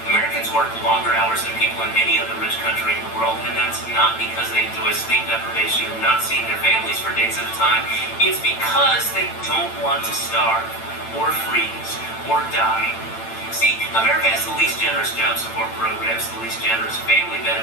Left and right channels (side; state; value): right; late; 8.9 ms